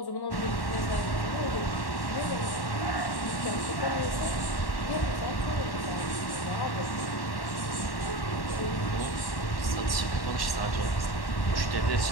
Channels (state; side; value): late; right; 1.1 ms